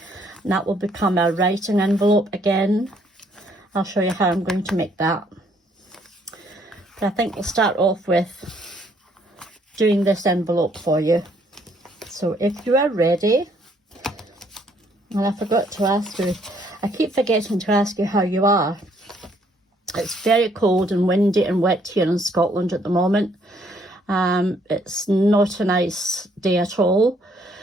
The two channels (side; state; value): both; normal; correlation 0.67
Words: and that will become a writing envelope again. I'll show you how I'm going to make that. But I think we'll start off with doing this envelope for you. So if you are ready, and I forgot to ask you, I keep forgetting to ask you how you are. It's very cold and windy and wet here in Scotland at the moment. It's not a nice day at all.